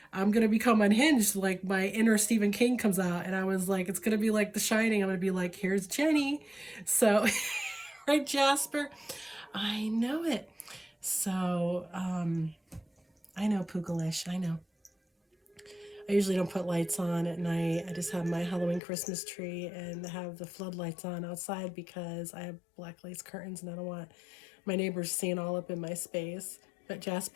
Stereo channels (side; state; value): right; drops out; at 18.8 s